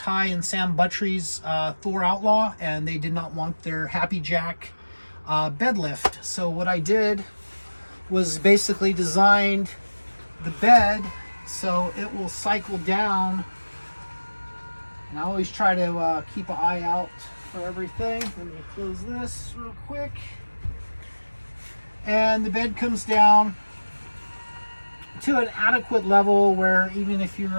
and Sam Buttry's Thor Outlaw, and they did not want their Happy Jack bed lift. So what I did was basically designed the bed so it will cycle down. And I always try to keep an eye out for everything. Let me close this real quick. And the bed comes down to an adequate level where even if you're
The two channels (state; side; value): inverted; both; correlation -1.00